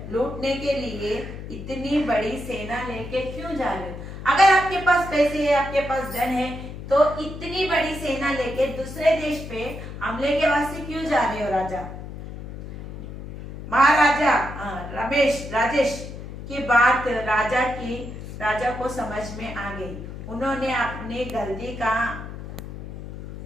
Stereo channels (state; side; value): noise; left; hum, 10 dB below the sound